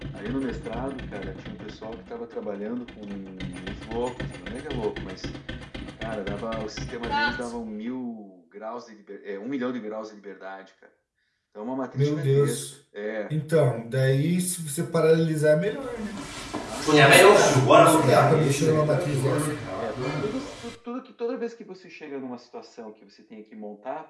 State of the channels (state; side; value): identical; both; correlation 1.00